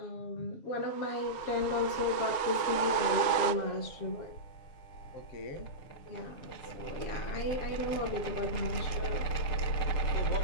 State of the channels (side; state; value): right; late; 7.1 ms